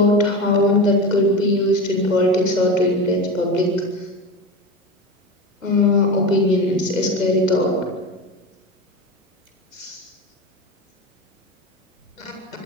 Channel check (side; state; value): both; normal; correlation 0.25